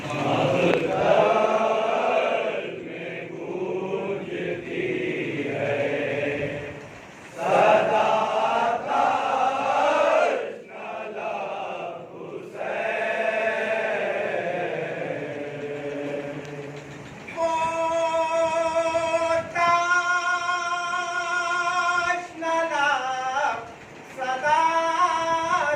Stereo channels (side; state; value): both; identical; correlation 1.00